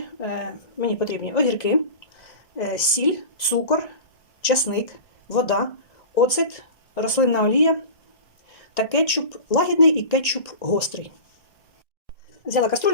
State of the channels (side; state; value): right; late; 2.0 ms